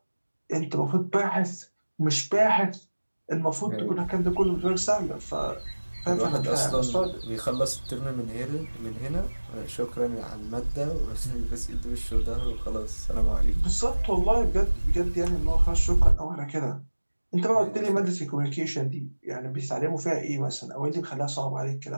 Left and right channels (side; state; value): both; inverted; correlation -1.00